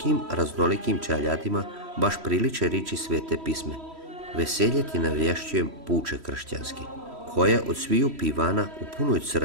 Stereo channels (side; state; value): left; late; 3.1 ms